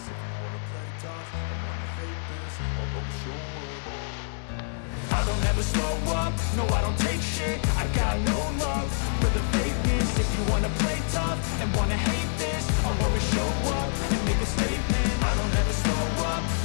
If you wanna play tough and wanna hate this, I'll always show up. I don't ever slow up, no I don't take shit. I got no love for the fakeness. If you wanna play tough and wanna hate this, I'll always show up and make a statement. I don't ever slow up,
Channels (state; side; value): silent; right; digital silence